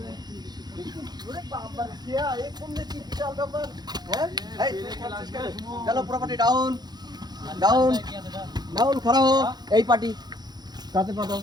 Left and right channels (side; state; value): left; late; 0.20 ms